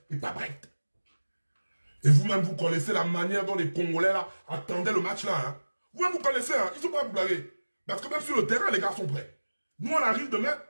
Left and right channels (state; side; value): inverted; both; correlation -1.00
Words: et pas prête. Et vous-même, vous connaissez la manière dont les Congolais là attendaient le match là. Hein. Vous-même, vous connaissez, hein, ils sont prêts à vous blaguer. Parce que même sur le terrain, les gars sont prêts. Nous, on arrive demain